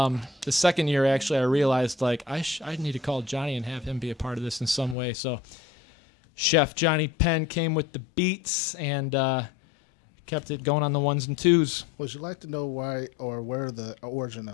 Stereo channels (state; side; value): drops out; right; at 5.0 s